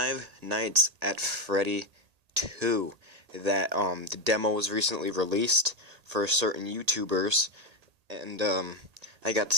Nights at Freddy 2. That the demo was recently released for certain YouTubers, and I got to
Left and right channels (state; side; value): late; left; 1.8 ms